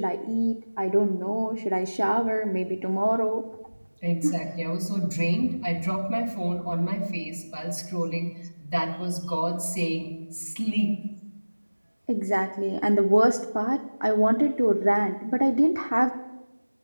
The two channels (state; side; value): inverted; both; correlation -1.00